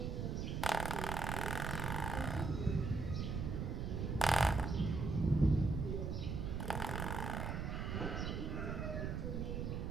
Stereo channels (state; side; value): noise; right; rumble, 2 dB below the sound